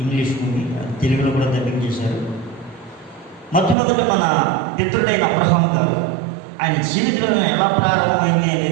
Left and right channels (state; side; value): drops out; left; at 3.8 s